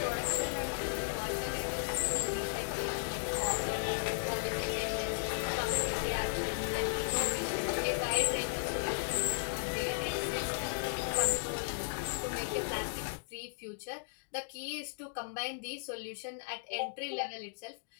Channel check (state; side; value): silent; right; digital silence